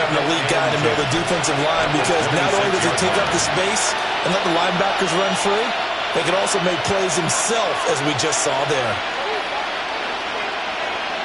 a lead guy in the middle of the defensive line, because not only does he take up the space and let the linebackers run free, they can also make plays himself, as we just saw there.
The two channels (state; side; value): identical; both; correlation 1.00